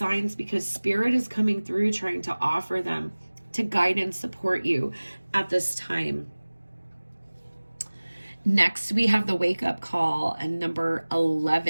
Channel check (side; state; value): both; inverted; correlation -1.00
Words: because Spirit is coming through trying to offer them to guide and support you at this time. Next, we have the wake up call and number